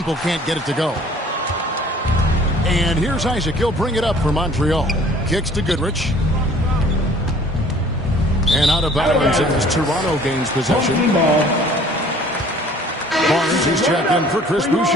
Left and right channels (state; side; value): normal; both; correlation 0.53